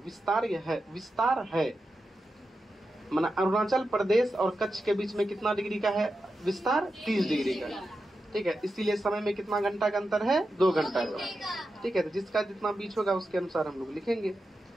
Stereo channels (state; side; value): normal; both; correlation 0.90